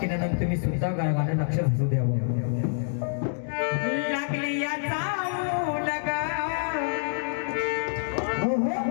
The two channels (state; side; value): silent; right; digital silence